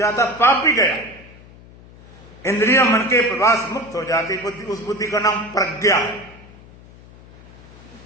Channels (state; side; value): noise; left; hum, 22 dB below the sound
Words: पाप भी गया, इंद्रियों मन के प्रभाव से मुक्त हो जाती बुद्धि। उस बुद्धि का नाम प्रज्ञा है।